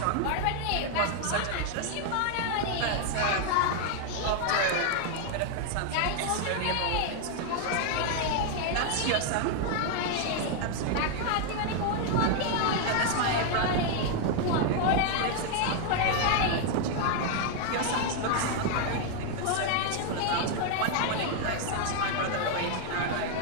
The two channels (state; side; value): different; both; correlation 0.00